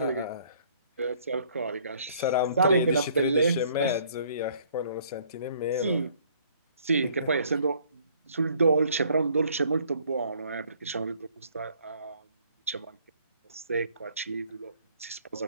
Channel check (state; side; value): inverted; both; correlation -0.61